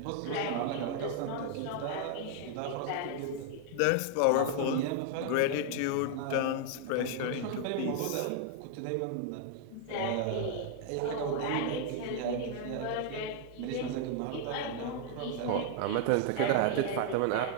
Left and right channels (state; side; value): different; both; correlation 0.00